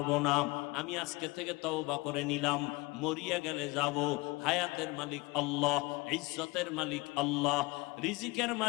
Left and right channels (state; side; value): quieter; right; 24.1 dB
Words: না? আমি আজকে থেকে তওবা করে নিলাম, মরিয়া গেলে যাব। হায়াতের মালিক আল্লাহ, ইজ্জতের মালিক আল্লাহ, রিজিকের